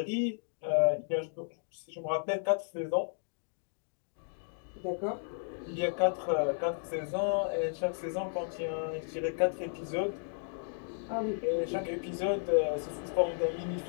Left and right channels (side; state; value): right; silent; digital silence